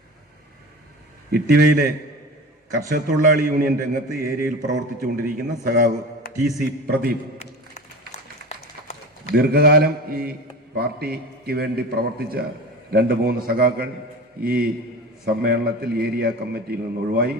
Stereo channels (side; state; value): both; normal; correlation 0.33